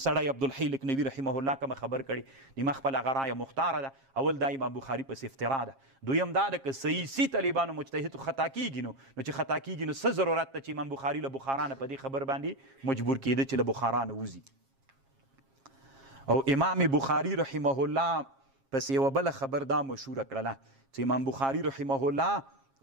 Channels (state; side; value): late; left; 7.4 ms